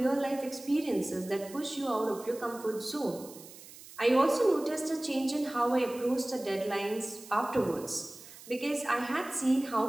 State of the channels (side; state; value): right; noise; hiss, 18 dB below the sound